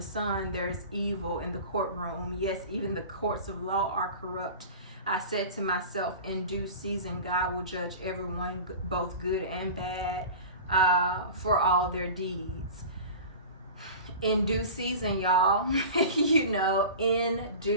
sun there's evil in the courtroom. Yes, even the courts of law are corrupt. I said to myself, in due season God will judge everyone, both good and bad, for all their deeds. In due season, y'all. You know, in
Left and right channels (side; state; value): both; inverted; correlation -0.35